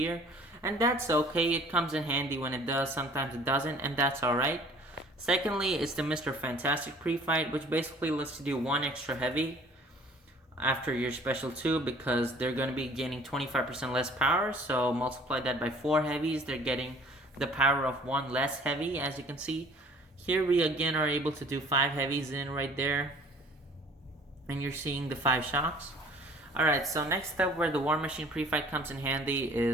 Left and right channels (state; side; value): normal; both; correlation 0.52